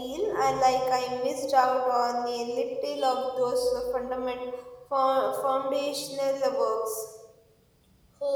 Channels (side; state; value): both; identical; correlation 1.00